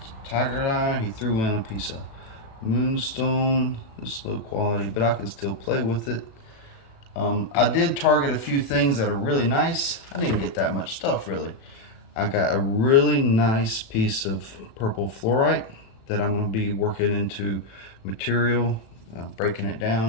tiger eye, he threw in a piece of moonstone. It's low quality, but I can still play with it. I did target a few things that are really nice. I didn't get that much stuff really. I got a really nice piece of purple fluorite that I'm going to be working into material breaking it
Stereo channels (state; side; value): late; right; 36 ms